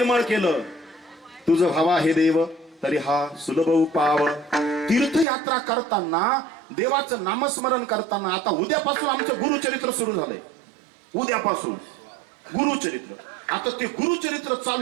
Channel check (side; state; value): left; drops out; at 5.2 s